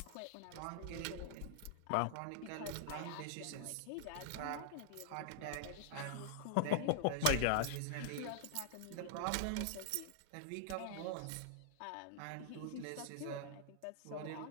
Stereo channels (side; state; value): both; different; correlation -0.01